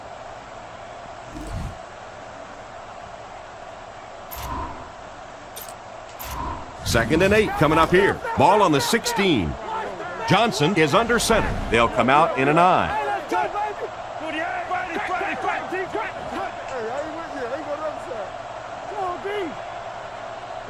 Second and 8 coming up here. Ball on the 16. Johnson is under center. They'll come out in an I.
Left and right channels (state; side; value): identical; both; correlation 1.00